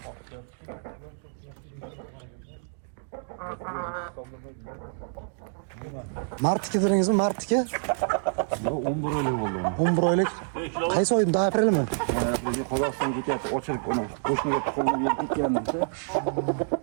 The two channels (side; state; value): left; silent; digital silence